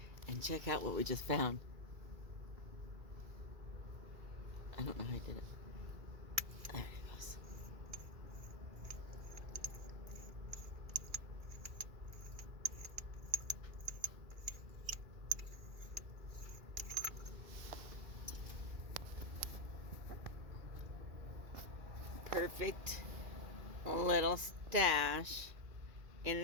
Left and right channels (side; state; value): left; late; 2.3 ms